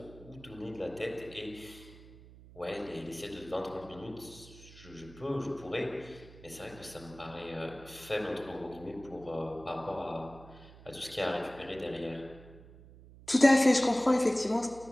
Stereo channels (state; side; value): noise; right; hum, 19 dB below the sound